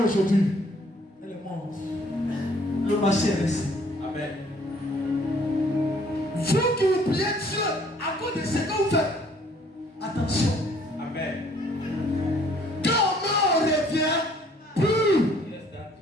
aujourd'hui? Elle est morte. Le marché est resté. Amen. Vous qui vous priez Dieu à cause de ce que vous faites, attention. Amen. Quand on revient plus.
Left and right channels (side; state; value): both; normal; correlation 0.60